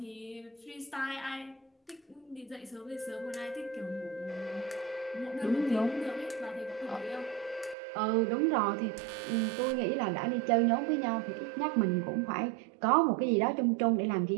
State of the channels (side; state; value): left; drops out; at 7.8 s